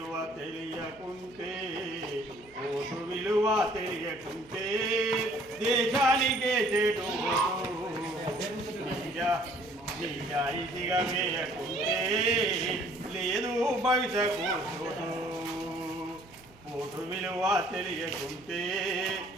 తెలియకుంటే దేశానికే చెడు. నిజాయితీగా వేయకుంటే లేదు భవిష్యత్తు చోటు. ఓటు విలువ తెలియకుంటే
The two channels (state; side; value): noise; right; hum, 26 dB below the sound